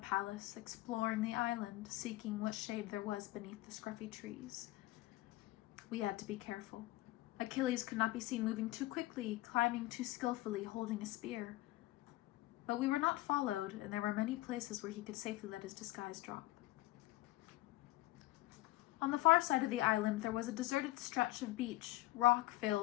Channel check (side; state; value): right; quieter; 18.1 dB